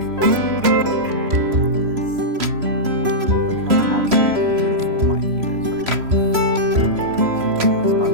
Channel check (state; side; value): late; left; 3.0 ms